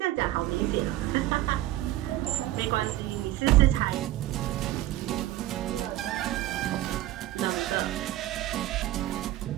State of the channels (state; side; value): quieter; left; 14.8 dB